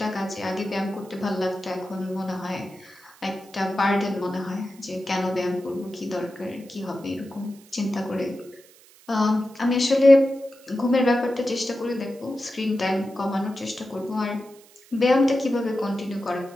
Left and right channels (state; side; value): noise; right; hiss, 25 dB below the sound